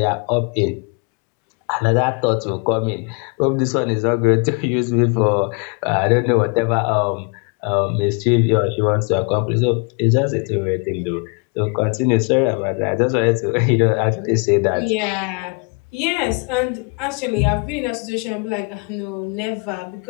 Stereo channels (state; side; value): quieter; right; 33.9 dB